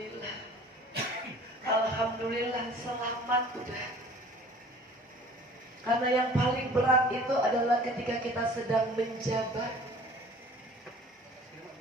Alhamdulillah selamat udah. Karena yang paling berat itu adalah ketika kita sedang menjabat,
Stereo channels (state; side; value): normal; both; correlation 0.48